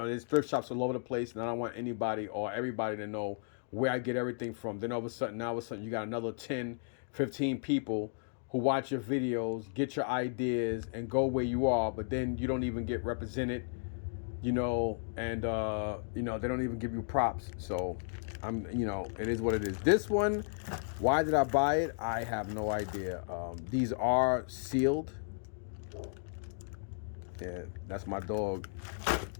there's thrift shops all over the place, and I don't want anybody or everybody to know where I get everything from. Then all of a sudden, you got another 10, 15 people who watch your videos, get your ideas, and go where you are, but then you don't even get represented, you know, and, you know, they don't even give you props. So, you know, it is what it is. This one, why did I buy it? I have no idea. These are sealed. Yeah, that's my dog,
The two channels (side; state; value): right; silent; digital silence